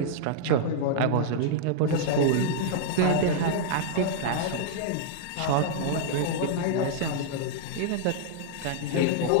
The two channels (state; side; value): different; both; correlation -0.01